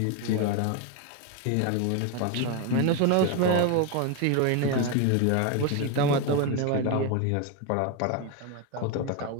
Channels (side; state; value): both; different; correlation 0.02